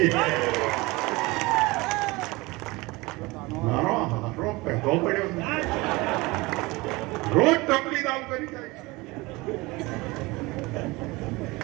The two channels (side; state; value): left; quieter; 22.8 dB